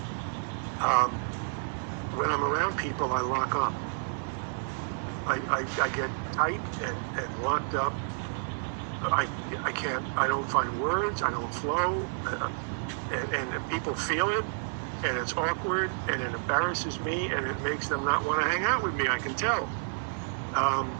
When I'm around people, I lock up. I get tight and locked up. I don't find words, I don't flow, and people feel it, and it's awkward, and it embarrasses me, and it makes them not want to hang out with me, I can tell.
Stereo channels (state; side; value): silent; left; 58 dB below the other